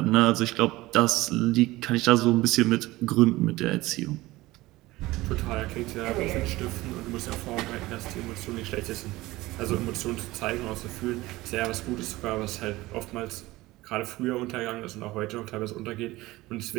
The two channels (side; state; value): left; quieter; 19.0 dB